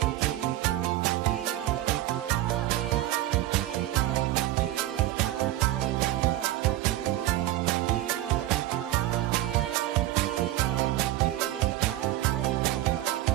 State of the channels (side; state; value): left; quieter; 14.8 dB